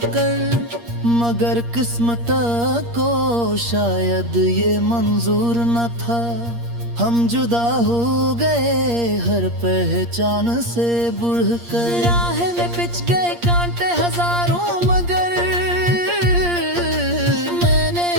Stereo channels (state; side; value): late; left; 8.5 ms